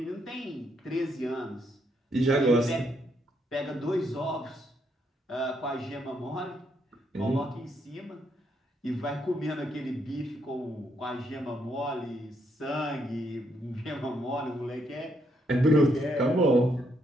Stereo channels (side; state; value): both; normal; correlation 0.75